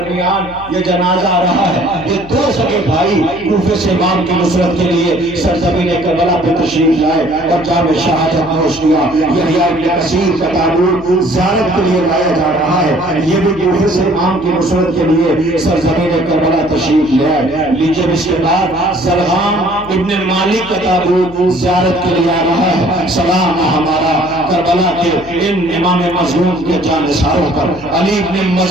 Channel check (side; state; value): left; noise; hum, 18 dB below the sound